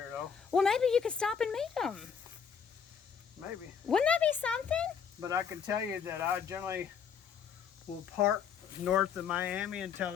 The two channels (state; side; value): quieter; right; 7.0 dB